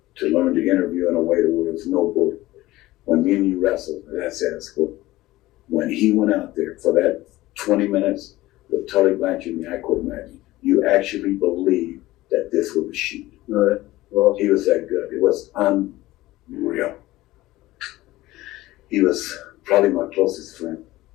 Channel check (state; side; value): quieter; right; 17.6 dB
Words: to learn to interview in a way that was no bull. When me and you wrestled, that's at school. When he went out there for that 20 minutes with Tully Blanchard and I couldn't imagine, you actually believed that this was a shoot. Right. Well, he was that good. It was unreal. He was probably my closest friend.